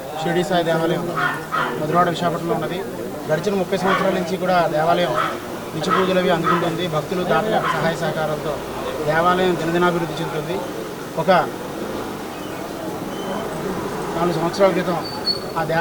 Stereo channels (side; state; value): both; identical; correlation 1.00